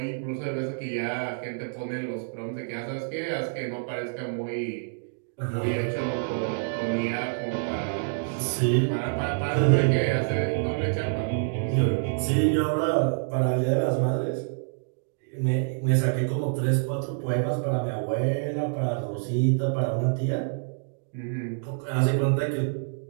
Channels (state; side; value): silent; left; digital silence